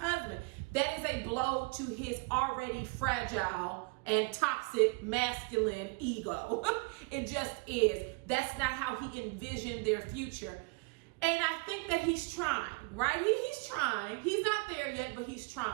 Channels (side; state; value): left; quieter; 30.5 dB